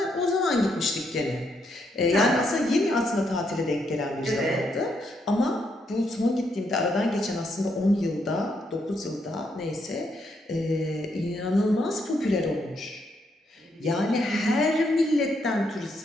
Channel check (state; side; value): normal; both; correlation 0.77